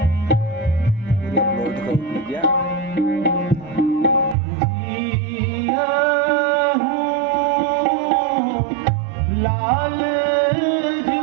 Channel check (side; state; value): left; drops out; at 4.4 s